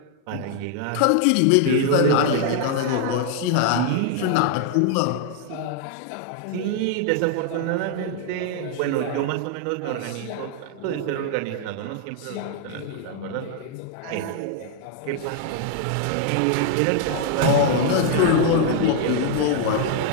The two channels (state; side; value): different; both; correlation 0.00